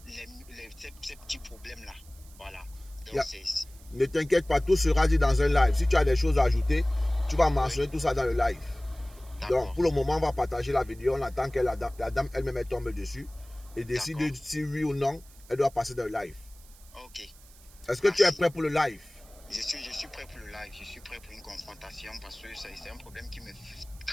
ces petits problèmes-là. Voilà. Donc, ne t'inquiète pas, tout sera dit dans un live. Si tu as des choses à ajouter, tu vas mentionner tout ça dans le live. Donc, pour le moment, on va partager la vidéo. On attend que la dame elle-même tombe dessus et décide si oui ou non, elle doit passer dans le live. Ok. Est-ce que tu es prêt pour le live? Je suis prêt pour le live. Je suis prêt pour une confrontation parce que c'est un problème qui me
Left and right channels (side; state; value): right; noise; hiss, 24 dB below the sound